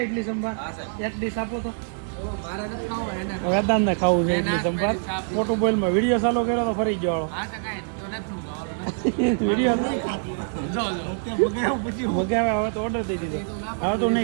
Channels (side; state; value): left; silent; digital silence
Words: ઇડલી સંભાર એક ડીશ આપો તો. વેદાંત ને ખાવું છે ઇડલી સંભાર. મોટું બોલમાં વિડીયો ચાલુ કર્યો તો ફરી ગયો વિડીયો મગાવ્યા. હવે તો ઓર્ડર દઈ દીધો. હવે તો